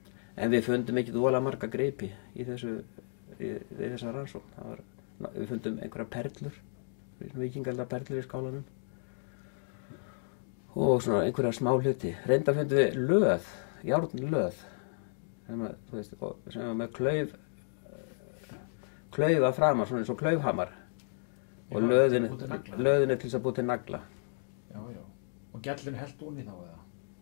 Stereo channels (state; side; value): silent; right; digital silence